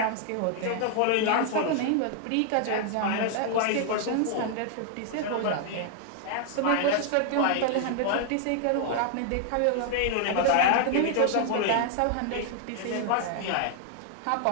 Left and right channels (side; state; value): both; different; correlation 0.00